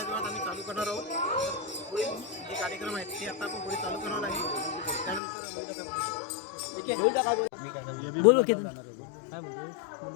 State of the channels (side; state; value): right; drops out; at 5.2 s